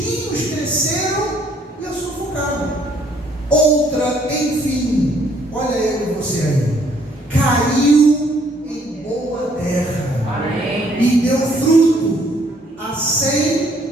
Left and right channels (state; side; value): normal; both; correlation 0.65